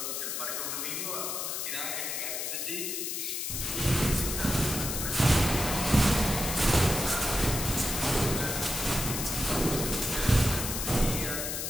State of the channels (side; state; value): left; noise; hiss, 3 dB below the sound